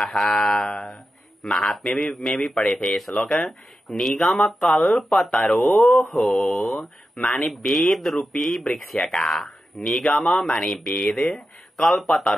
महात्म्य में भी पढ़े थे श्लोक। निगम कल्पतरोः माने वेद रूपी वृक्ष का, निगम माने वेद,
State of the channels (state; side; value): normal; both; correlation 0.91